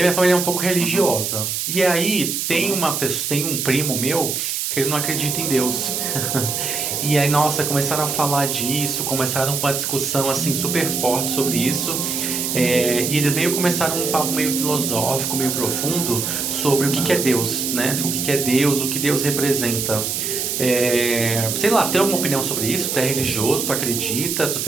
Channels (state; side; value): noise; right; hiss, 2 dB below the sound